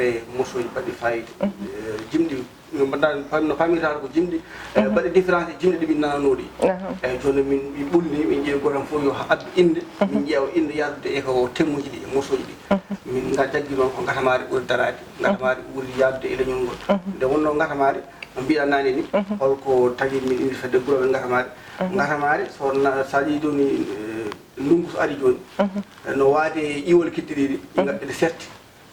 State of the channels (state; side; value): identical; both; correlation 1.00